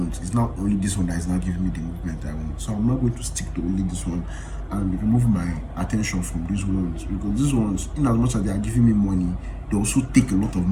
It's not only this one that is not giving me the movement I want. So I'm not going to stick to only this one and remove my attention from these ones, because these ones, in as much as they are giving me money, they also take a lot of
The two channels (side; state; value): both; identical; correlation 1.00